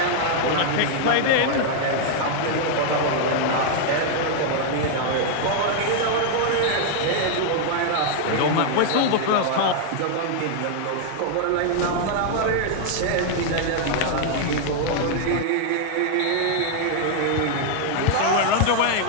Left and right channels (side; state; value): both; different; correlation 0.00